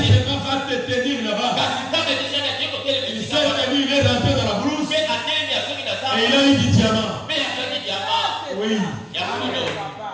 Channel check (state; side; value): identical; both; correlation 1.00